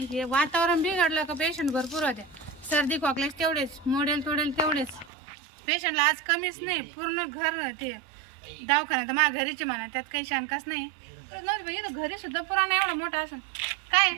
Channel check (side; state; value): left; drops out; at 5.1 s